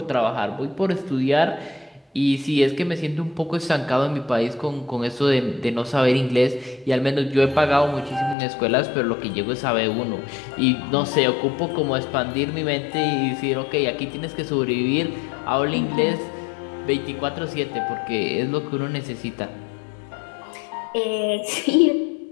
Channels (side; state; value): right; drops out; at 8.3 s